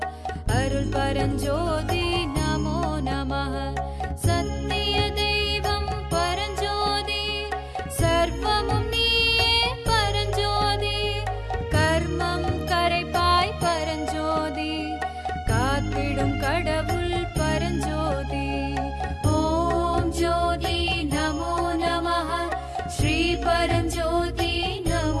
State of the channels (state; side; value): identical; both; correlation 1.00